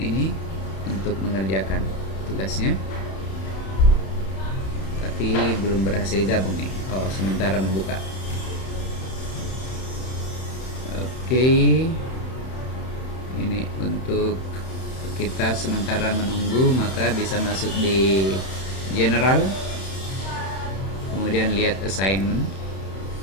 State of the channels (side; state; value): right; late; 31 ms